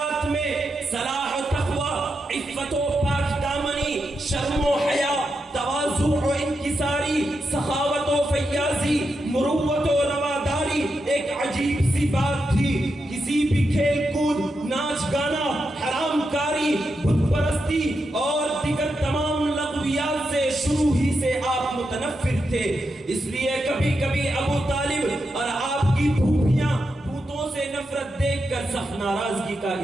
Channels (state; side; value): normal; both; correlation 0.86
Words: میں صلاح و تقوی، عفت و پاک دامنی، شرم و حیا، تواضع و انکساری، سخاوت و فیاضی، مروت و رواداری ایک عجیب سی بات تھی۔ کسی بھی کھیل کود، ناچ گانا، حرام کاری، بت پرستی اور دیگر تمام لغویات سے شروع ہی سے آپ متنفر تھے۔ اس لیے کبھی کبھی ابو طالب اور آپ کی پھوپھیاں بتوں سے نفرت دیکھ کر سخت ناراضگی کا